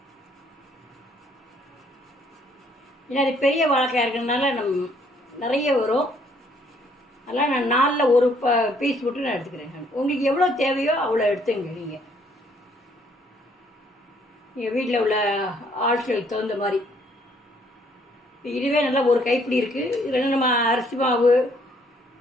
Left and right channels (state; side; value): normal; both; correlation 0.65